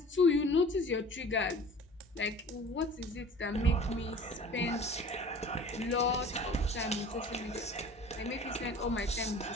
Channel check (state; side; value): normal; both; correlation 0.44